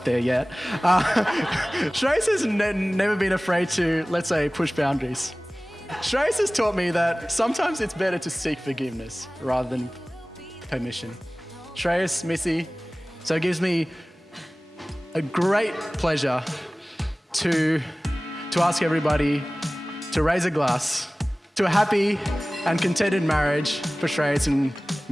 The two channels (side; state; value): both; normal; correlation 0.98